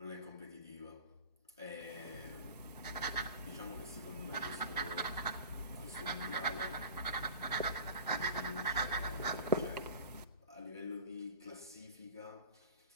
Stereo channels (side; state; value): both; inverted; correlation -0.36